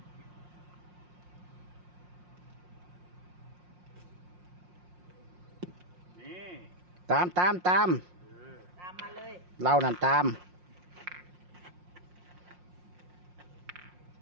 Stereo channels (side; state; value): left; late; 5.6 ms